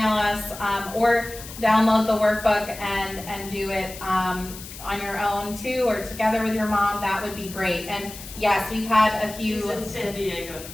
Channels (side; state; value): left; noise; hiss, 14 dB below the sound